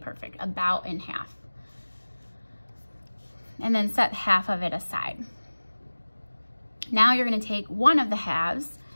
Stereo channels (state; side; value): inverted; both; correlation -1.00